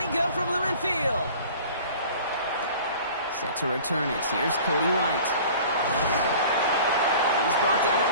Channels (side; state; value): both; inverted; correlation -0.44